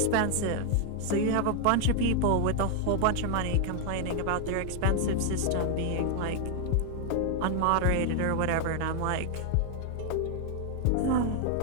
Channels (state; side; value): different; both; correlation 0.00